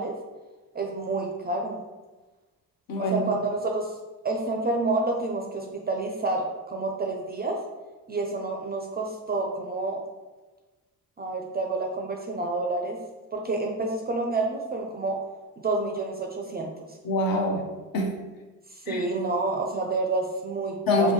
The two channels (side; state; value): both; normal; correlation 0.12